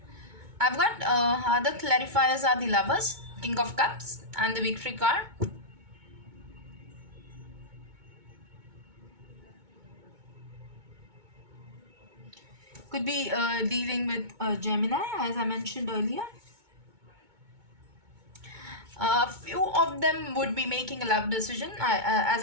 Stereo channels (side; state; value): left; late; 2.2 ms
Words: I've got other clarifiers are the lovers, King of Cups, and the victory card. Could be dealing with Gemini, as I mentioned earlier. A few of them would be making a love decision, as